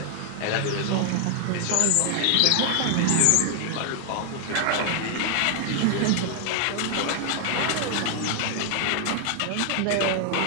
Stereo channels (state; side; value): different; both; correlation 0.00